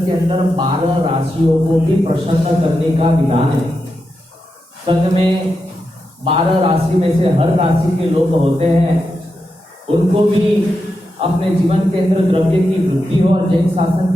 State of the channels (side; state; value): both; normal; correlation 0.87